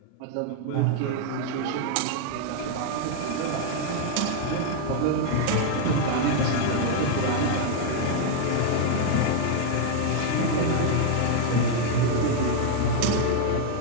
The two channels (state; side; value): different; both; correlation 0.00